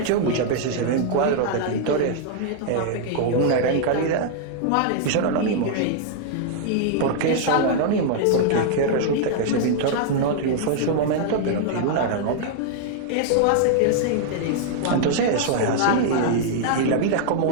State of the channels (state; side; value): different; both; correlation -0.01